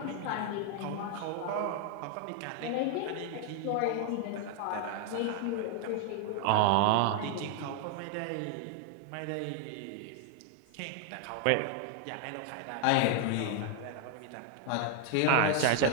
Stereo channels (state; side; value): different; both; correlation 0.00